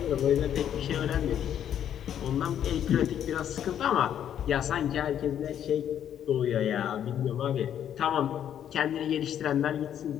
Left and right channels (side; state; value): right; quieter; 9.8 dB